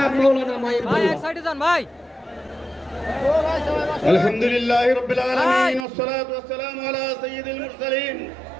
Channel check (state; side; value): drops out; left; at 5.9 s